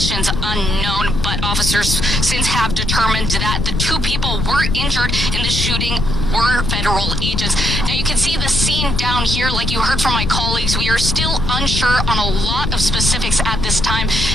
unknown, but officers since have determined that the 2 people were injured in the shooting were federal agents. Now, you can see the scene down here. Like you heard from my colleagues, we are still unsure on a lot of specifics at this time,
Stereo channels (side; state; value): left; noise; rumble, 1 dB below the sound